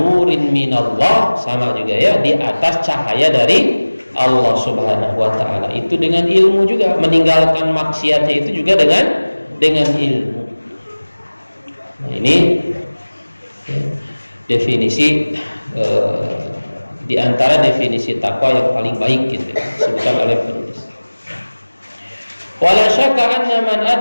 minallah, sama juga ya, di atas cahaya dari Allah Subhanahu wa ta'ala. Itu dengan ilmu juga, meninggalkan maksiatnya itu juga dengan ilmu. Nah, ini definisi di antara definisi takwa yang paling baik, gitu, disebutkan oleh penulis. Wala syakka anna man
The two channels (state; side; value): inverted; both; correlation -1.00